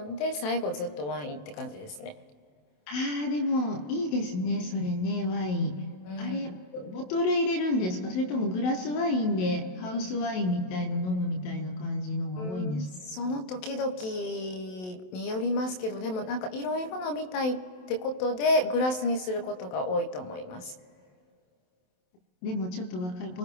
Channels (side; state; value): right; late; 27 ms